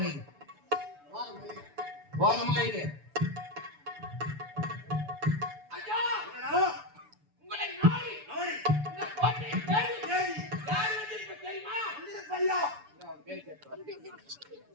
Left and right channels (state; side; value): late; left; 6.9 ms